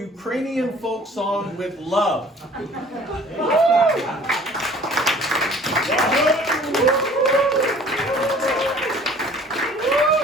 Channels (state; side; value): normal; both; correlation 0.51